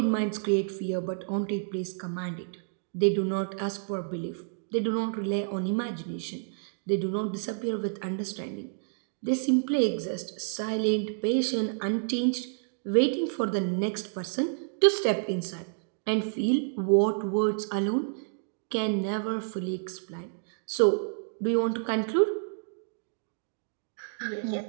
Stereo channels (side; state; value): left; silent; digital silence